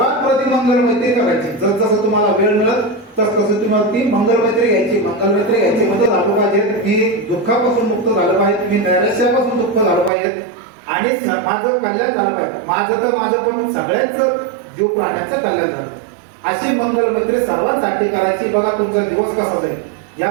प्रथम मंगलमैत्री करायची. जसं तुम्हाला वेळ मिळत तसं तुम्हाला ती मंगलमैत्री घ्यायची. मंगलमैत्री घ्यायची म्हणजे झालं पाहिजे मी दुःखापासून मुक्त झालं पाहिजे, मी नैराश्यापासून मुक्त झालं पाहिजे, आणि माझं कल्याण झालं पाहिजे. माझं पण सगळ्याच जीव प्राण्याचं कल्याण झालं. अशी मंगलमैत्री सर्वांसाठी करायची. बघा तुमचा दिवस कसा जाईल. या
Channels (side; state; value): left; drops out; at 10.1 s